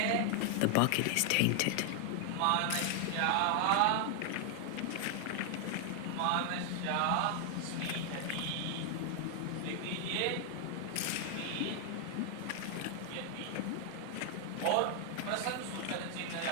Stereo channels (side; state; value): both; different; correlation 0.00